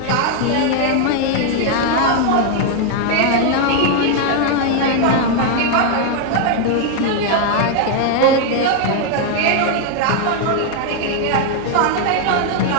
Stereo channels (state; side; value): different; both; correlation 0.00